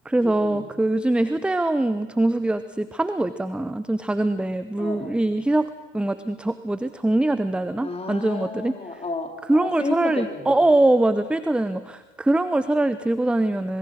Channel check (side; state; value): both; normal; correlation 0.95